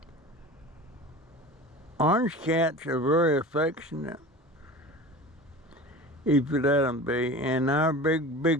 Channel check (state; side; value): normal; both; correlation 0.36